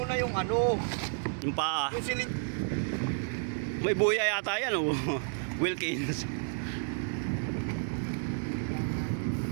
yung ano. Yung paa. Yung silid. May buya yata yan oh. Wilkins.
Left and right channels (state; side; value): silent; left; 56 dB below the other